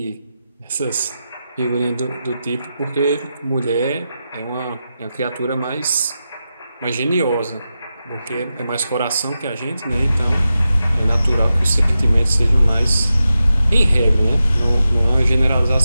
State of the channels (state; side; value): inverted; both; correlation -0.91